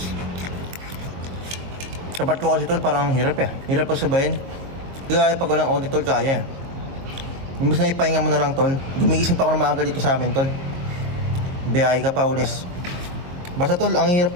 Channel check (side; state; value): left; late; 22 ms